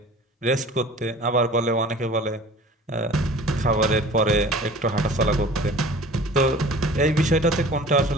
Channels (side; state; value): both; normal; correlation 0.44